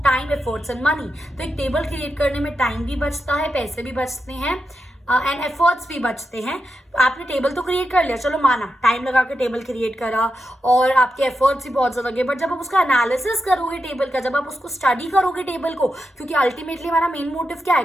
time, efforts and money. तो एक टेबल क्रिएट करने में टाइम भी बचता है, पैसे भी बचते हैं एंड एफर्ट्स भी बचते हैं। आपने टेबल तो क्रिएट कर लिया, चलो माना टाइम लगा के टेबल क्रिएट करा और आपके एफर्ट्स भी बहुत ज़्यादा लगे, बट जब आप उसका एनालिसिस करोगे टेबल का, जब आप उसको स्टडी करोगे टेबल को, क्योंकि अल्टीमेटली हमारा मेन मोटिव क्या है,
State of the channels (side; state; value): both; normal; correlation 0.87